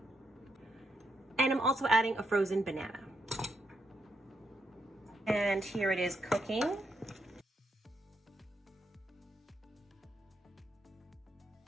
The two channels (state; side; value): normal; both; correlation 0.80